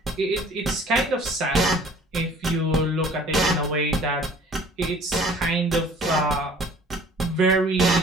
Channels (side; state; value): both; normal; correlation 0.51